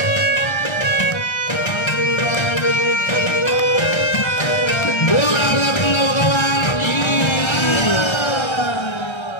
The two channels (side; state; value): right; late; 1.3 ms